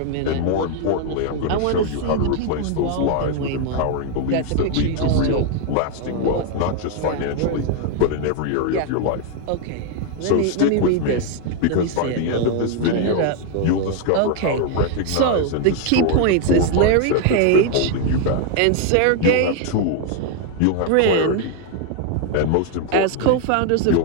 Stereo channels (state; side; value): different; both; correlation 0.01